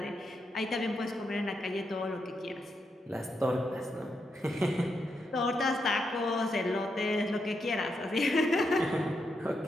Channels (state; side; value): normal; both; correlation 0.83